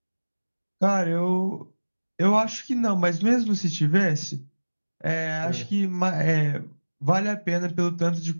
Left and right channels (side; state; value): both; inverted; correlation -1.00